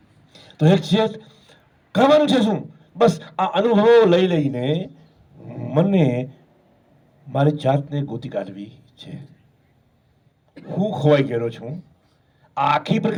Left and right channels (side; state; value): both; identical; correlation 1.00